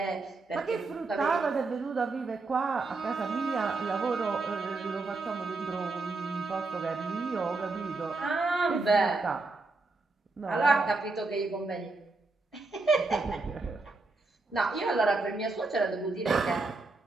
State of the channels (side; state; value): left; quieter; 3.6 dB